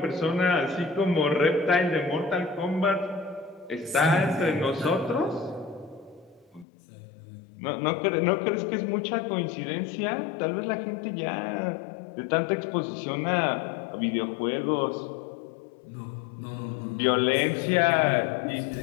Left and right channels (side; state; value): right; drops out; at 6.7 s